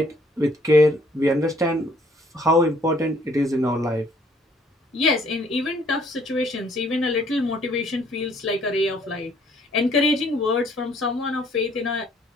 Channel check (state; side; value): normal; both; correlation 0.62